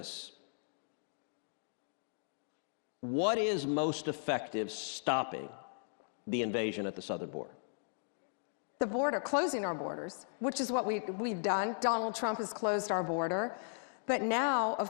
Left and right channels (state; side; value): silent; right; digital silence